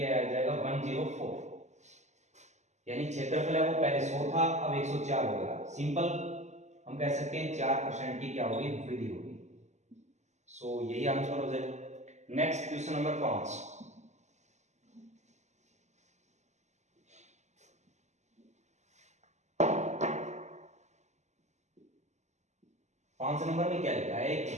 जाएगा 104। यानी क्षेत्रफल है वो पहले 100 था, अब 104 हो गया। सिंपल, हम कह सकते हैं 4% की क्या होगी, वृद्धि होगी। सो यही आंसर हो जाएगा। Next question number 5। 5 नंबर में क्या लिखा है, एक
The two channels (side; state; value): left; late; 0.33 ms